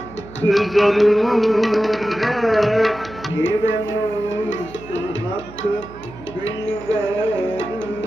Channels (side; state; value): right; noise; hum, 17 dB below the sound